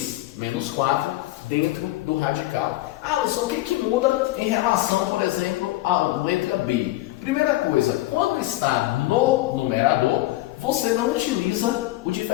menos 4 dentro do radical. Alisson, o que muda em relação, por exemplo, à letra B? Primeira coisa, quando está no numerador, você não utiliza o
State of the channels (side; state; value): right; quieter; 17.3 dB